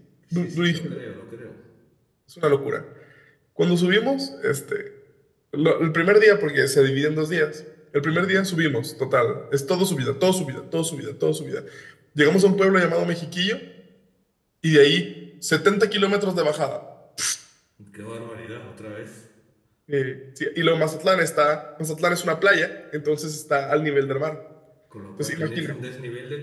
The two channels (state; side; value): identical; both; correlation 1.00